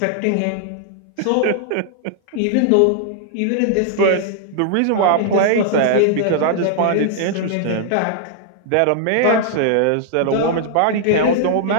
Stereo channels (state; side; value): different; both; correlation -0.01